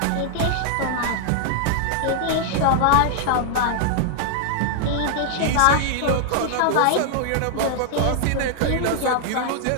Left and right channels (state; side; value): different; both; correlation -0.01